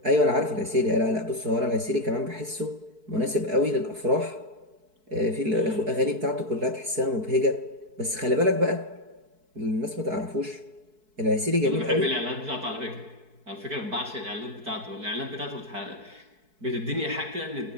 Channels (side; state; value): left; late; 4.6 ms